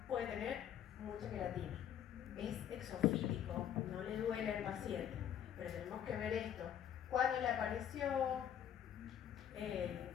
puede tener mucha queratina. Es exofítico, no le duele al paciente, pero tenemos que ver esto. ¿Cuándo le apareció?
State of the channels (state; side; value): quieter; right; 9.7 dB